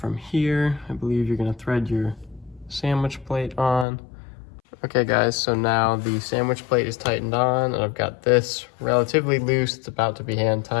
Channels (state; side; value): drops out; right; at 3.9 s